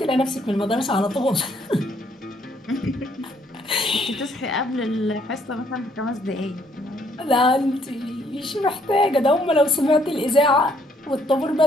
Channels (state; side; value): normal; both; correlation 0.67